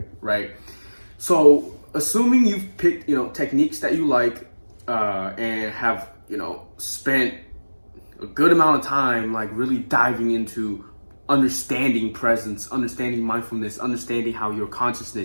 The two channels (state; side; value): inverted; both; correlation -1.00